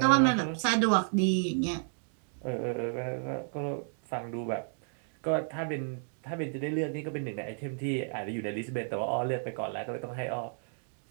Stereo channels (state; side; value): silent; left; 56 dB below the other